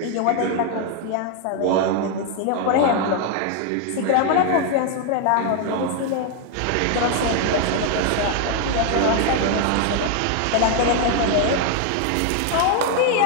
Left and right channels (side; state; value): both; different; correlation 0.01